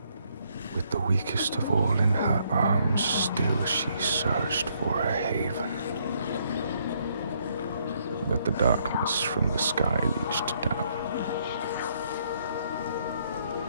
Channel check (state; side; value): inverted; both; correlation -0.71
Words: With the weakest of all in her arms, still she searched for a haven. But the darkness from the sky reached down.